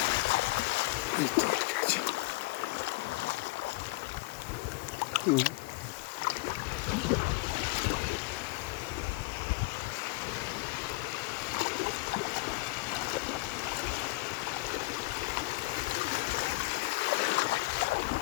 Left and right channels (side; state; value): right; quieter; 23.7 dB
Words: এই তো আটকে আছে।